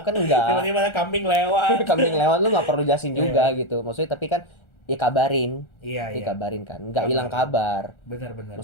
kan enggak. Tiba-tiba ada kambing lewat. Kambing lewat lu nggak perlu jelasin juga gitu. Maksudnya tapi kan ya kabarin. Iya. Dikabarin kan. Nggak hilang kabar. Benar.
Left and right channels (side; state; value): right; late; 1.3 ms